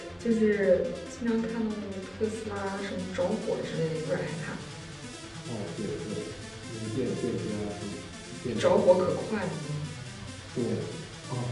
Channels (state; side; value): identical; both; correlation 1.00